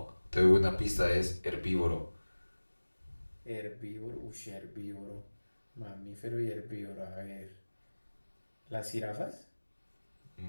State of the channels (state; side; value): inverted; both; correlation -1.00